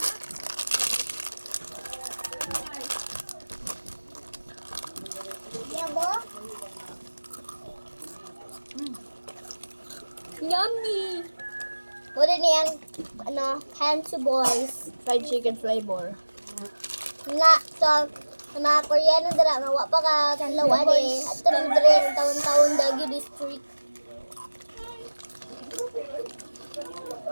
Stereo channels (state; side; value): inverted; both; correlation -1.00